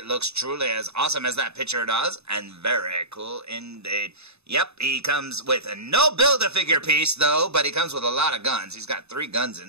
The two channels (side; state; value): left; late; 0.80 ms